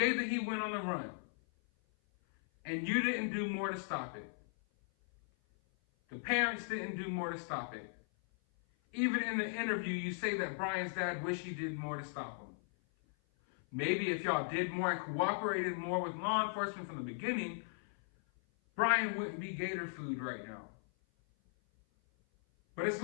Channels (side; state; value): right; silent; 53 dB below the other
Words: that he went on the run, and you didn't do more to stop it. The parents didn't do more to stop it. Even in the interview, you say that Brian's dad wished he did more to stop him. Maybe if y'all did more and cooperated more with law enforcement from the beginning, Brian wouldn't be gator food right now. But it's